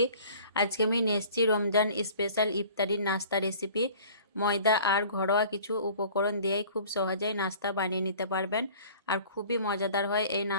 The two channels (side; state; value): both; inverted; correlation -0.48